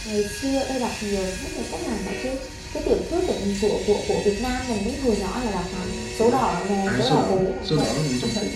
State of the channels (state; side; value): identical; both; correlation 1.00